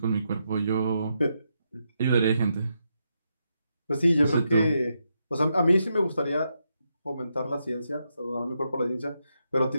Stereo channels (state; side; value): inverted; both; correlation -0.82